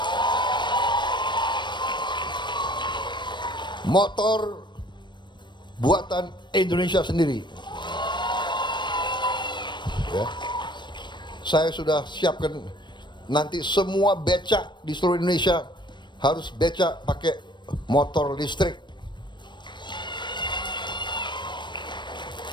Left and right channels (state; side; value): late; right; 0.22 ms